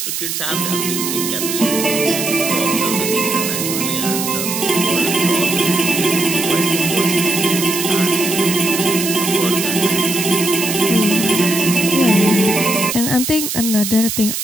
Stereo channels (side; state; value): right; noise; hiss, 3 dB below the sound